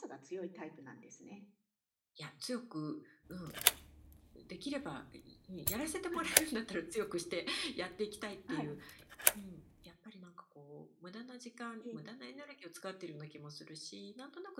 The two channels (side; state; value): both; identical; correlation 1.00